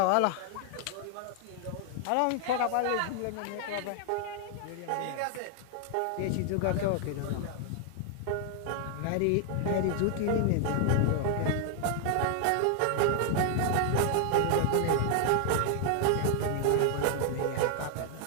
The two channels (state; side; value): different; both; correlation 0.00